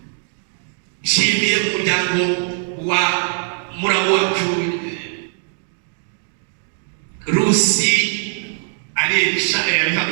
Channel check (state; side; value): silent; left; 66 dB below the other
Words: Nshimiye umuryango wa muramu wacu Rusi Aresha